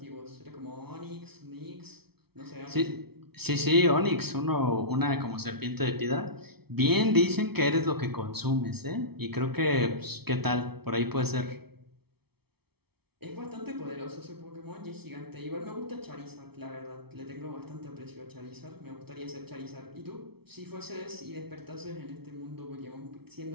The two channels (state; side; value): late; left; 0.96 ms